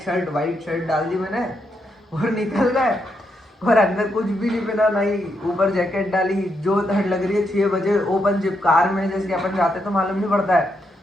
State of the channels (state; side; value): normal; both; correlation 0.80